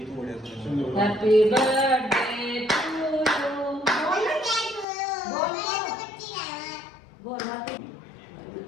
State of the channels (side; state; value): right; drops out; at 4.9 s